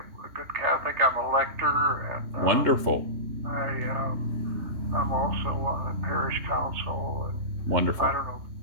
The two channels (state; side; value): late; left; 3.2 ms